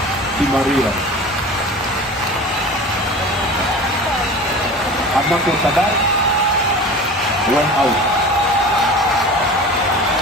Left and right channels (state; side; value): normal; both; correlation 0.36